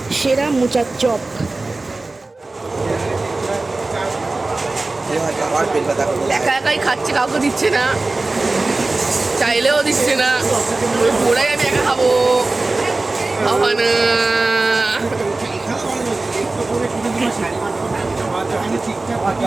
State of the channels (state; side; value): quieter; left; 3.3 dB